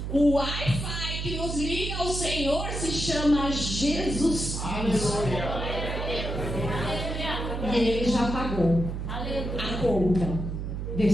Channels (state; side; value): noise; right; hum, 4 dB below the sound